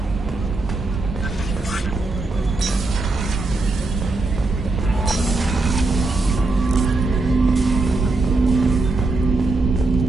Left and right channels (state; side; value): quieter; left; 3.3 dB